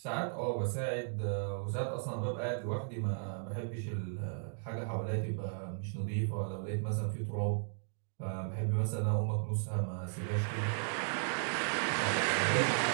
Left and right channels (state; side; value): silent; left; digital silence